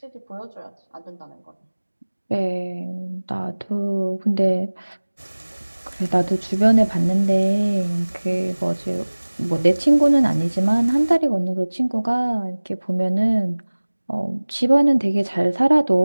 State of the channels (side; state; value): both; inverted; correlation -1.00